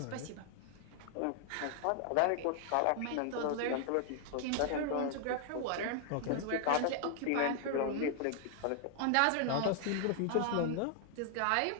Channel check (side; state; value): both; different; correlation 0.00